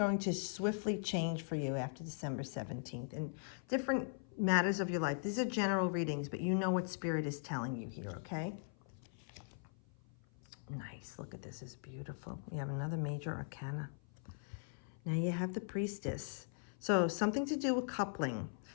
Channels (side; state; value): right; silent; 51 dB below the other